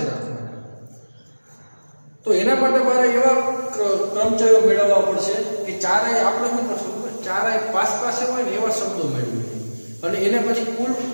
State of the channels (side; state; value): both; inverted; correlation -1.00